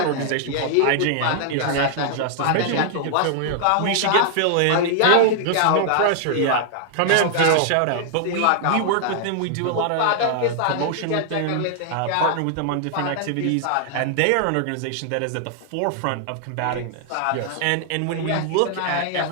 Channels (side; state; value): both; different; correlation -0.01